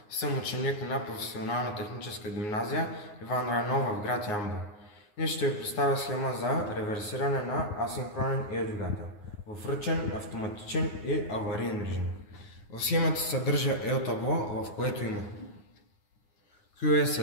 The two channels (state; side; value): late; right; 9.6 ms